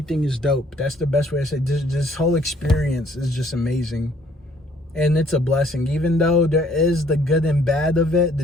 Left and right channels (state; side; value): normal; both; correlation 0.62